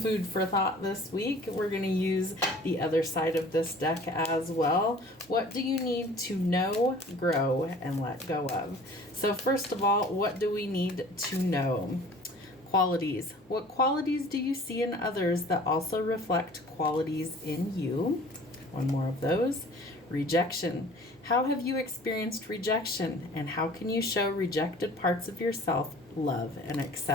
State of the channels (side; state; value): both; normal; correlation 0.47